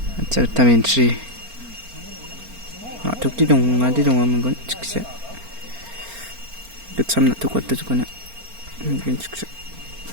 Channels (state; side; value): late; left; 4.4 ms